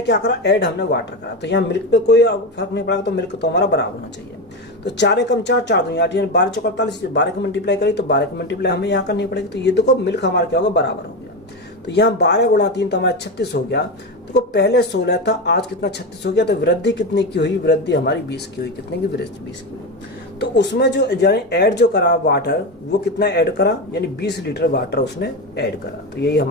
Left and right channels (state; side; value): normal; both; correlation 0.16